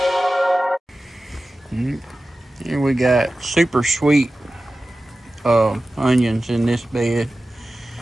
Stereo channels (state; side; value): normal; both; correlation 0.95